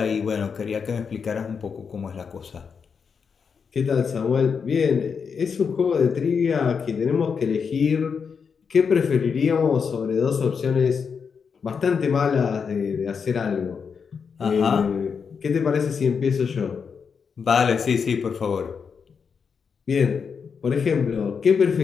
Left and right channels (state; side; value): quieter; right; 6.1 dB